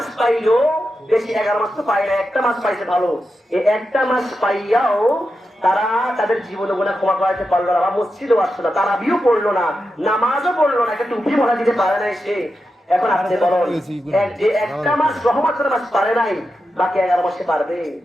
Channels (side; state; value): both; normal; correlation 0.89